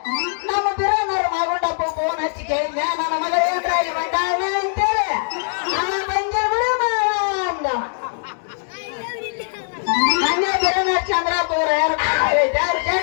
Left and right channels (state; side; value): silent; right; digital silence